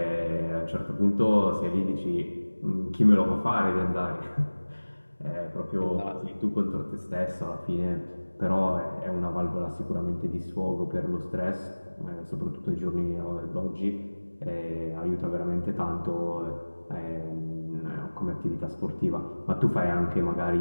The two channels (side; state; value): both; inverted; correlation -1.00